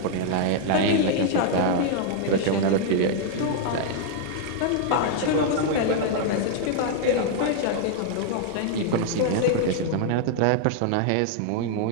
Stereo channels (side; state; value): both; different; correlation 0.00